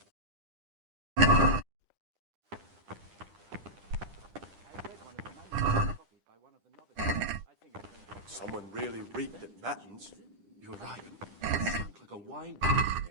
Someone really reeked at matins. You're right. It stunk like a wine barrel in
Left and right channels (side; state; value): left; late; 10 ms